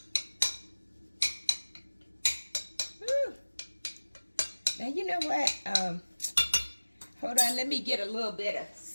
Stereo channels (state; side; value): inverted; both; correlation -1.00